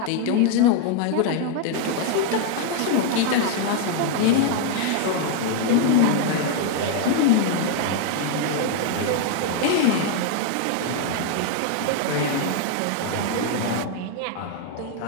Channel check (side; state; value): both; different; correlation 0.00